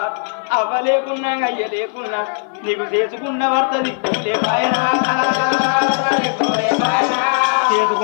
అవ్వ లేకున్నా అయ్య లేకున్నా నీకు చేసుకున్న భర్త దిక్కులే బాయనా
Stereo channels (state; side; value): silent; right; 56 dB below the other